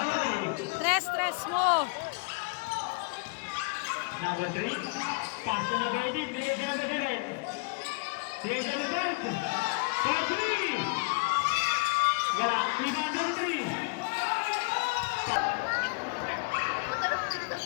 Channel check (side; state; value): right; quieter; 31.1 dB